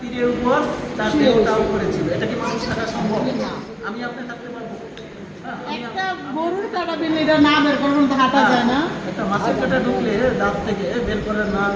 উপর তার দেহটাও করেছিল। এটা কি মানুষ থাকা সম্ভব? আমি আপনি থাকতে পারবো? একটা গরুর কাটা বিল এটা না বের করুন তো হাঁটা যায় না। একটা মাছের কাটা ঢুকলে দাঁত থেকে বের করে না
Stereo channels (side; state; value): both; identical; correlation 1.00